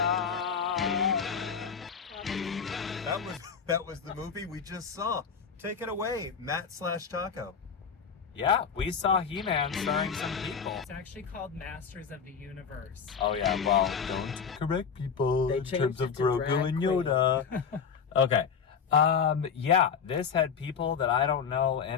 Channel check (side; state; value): right; quieter; 6.5 dB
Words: That was the movie we just saw. Take it away, Matt/Taco. Yeah, we saw He-Man starring some people. It's actually called Masters of the Universe. Oh yeah, well, don't correct people They in changed terms it of to Grogu drag and Yoda. Okay. Yeah, this had people that I don't know